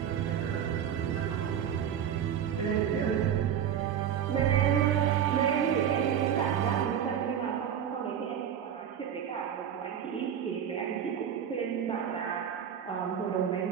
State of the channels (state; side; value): quieter; left; 8.9 dB